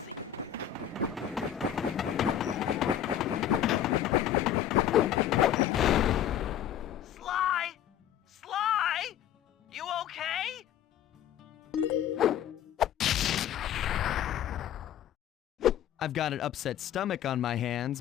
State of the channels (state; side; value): quieter; right; 10.4 dB